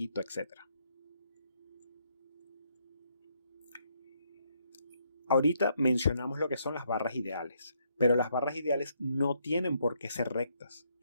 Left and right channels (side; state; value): both; inverted; correlation -0.74